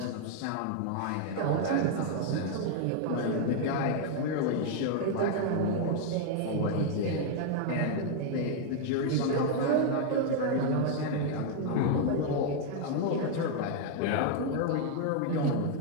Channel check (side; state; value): both; different; correlation 0.00